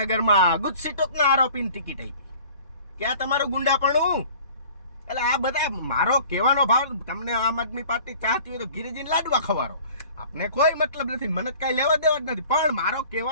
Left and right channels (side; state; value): both; inverted; correlation -0.48